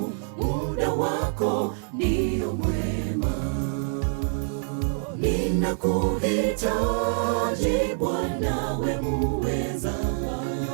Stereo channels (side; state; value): left; silent; digital silence